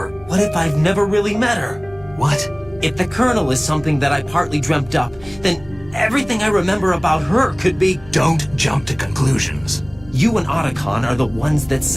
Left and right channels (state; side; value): noise; left; hum, 23 dB below the sound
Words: What if I've never really met her? What? If the Colonel is something that I partly dreamt up, then everything I remember about her could be... Don't jump to conclusions. You and Otacon are the ones that